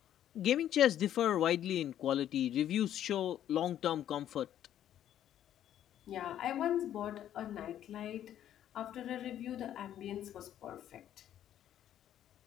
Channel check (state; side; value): quieter; right; 11.1 dB